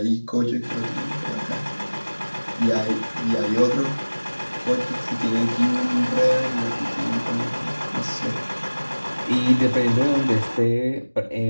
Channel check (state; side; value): inverted; both; correlation -1.00